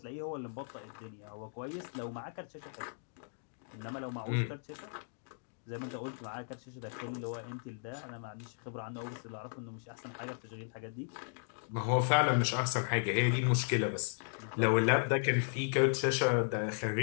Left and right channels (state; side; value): silent; right; digital silence